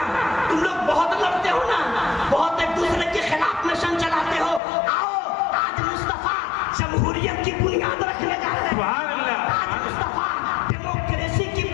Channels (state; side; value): drops out; right; at 4.6 s